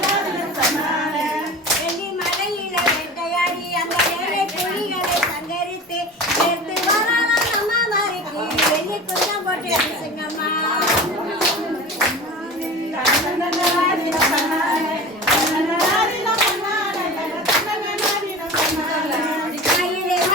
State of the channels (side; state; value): both; normal; correlation 0.34